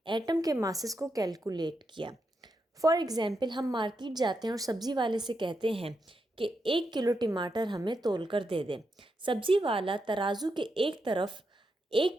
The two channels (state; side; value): normal; both; correlation 0.84